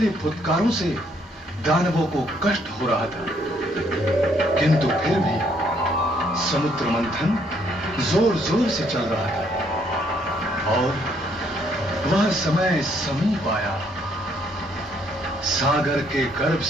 फुत्कारों से दानवों को कष्ट हो रहा था, किंतु फिर भी समुद्र मंथन जोर जोर से चल रहा था और वह समय समीप आया। सागर के गर्भ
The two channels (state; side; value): normal; both; correlation 0.68